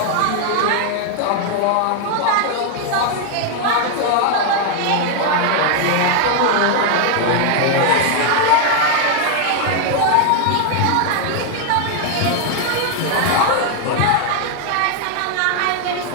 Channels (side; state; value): both; different; correlation 0.00